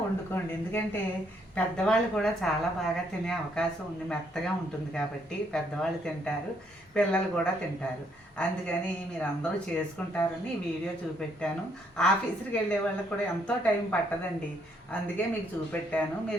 వండుకోండి. ఎందుకంటే పెద్దవాళ్ళు కూడా చాలా బాగా తినే అవకాశం ఉంది, మెత్తగా ఉంటుంది కాబట్టి పెద్దవాళ్ళు తింటారు, పిల్లలు కూడా తింటారు. అందుకని మీరు అందరూ చేసుకుంటారని ఈ వీడియో చూపెట్టాను. ఆఫీస్కి వెళ్ళే వాళ్ళకి కూడా ఎంతో టైం పట్టదండి, అందుకే మీకు చూపెట్టాను.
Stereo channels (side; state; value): both; normal; correlation 0.71